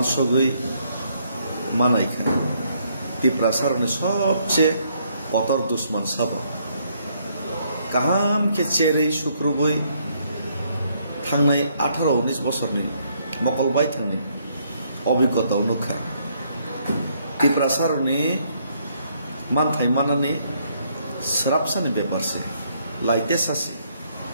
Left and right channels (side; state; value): both; inverted; correlation -0.70